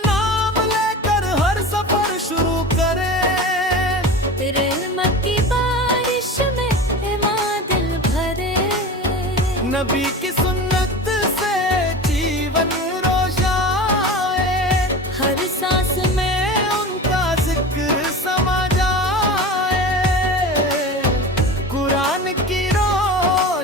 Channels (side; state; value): both; normal; correlation 0.31